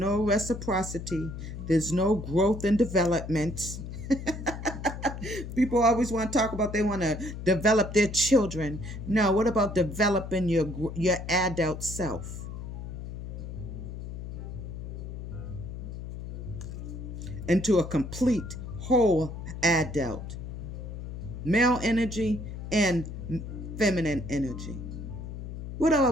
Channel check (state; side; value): noise; left; hum, 8 dB below the sound